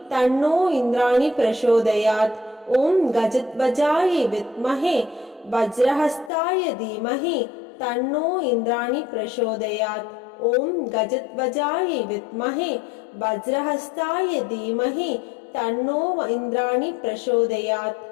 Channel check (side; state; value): right; drops out; at 6.3 s